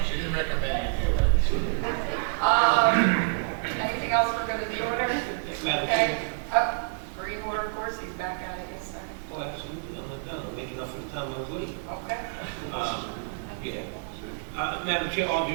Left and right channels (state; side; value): silent; left; digital silence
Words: recommend it. Anything else for good of the order? Madam Okay. Freeholder, of course, he's back at it, yes, sir. Oh, absolutely, I'm not done, I'm making up for the time I was late. Okay. Yeah. Madam Chair, all